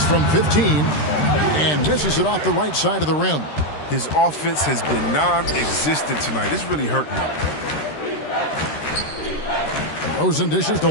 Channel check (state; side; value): late; right; 13 ms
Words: from 15 and misses it off the right side of the rim. His offense has been non-existent tonight. It's really hurting him. Rosen dishes to